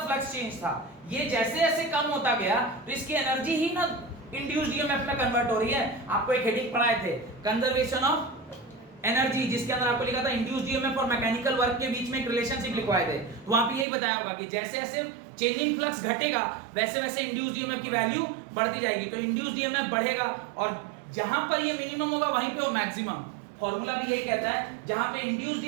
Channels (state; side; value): drops out; left; at 13.9 s